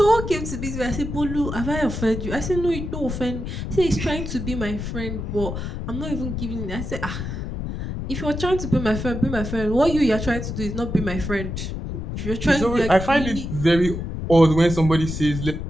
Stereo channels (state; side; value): noise; left; rumble, 5 dB below the sound